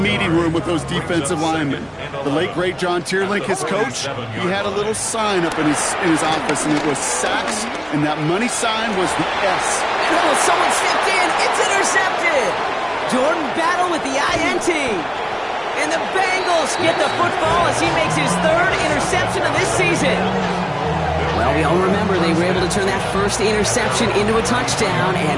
room with those defensive linemen. The late, great John Tierlink, his coach, he had a little sign up in his office, and it was sacks, and that money sign was the S. Oh, someone stepped in. It's intercepted. Jordan Battle with the INT. And the Bengals get the football as he makes his third interception of this season. Well, we all remember they were able to turn that first interception into a touchdown,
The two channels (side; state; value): both; identical; correlation 1.00